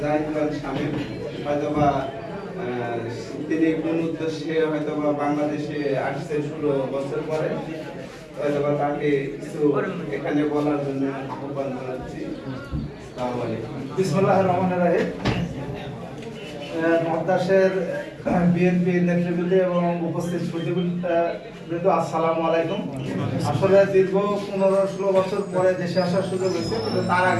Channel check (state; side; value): identical; both; correlation 1.00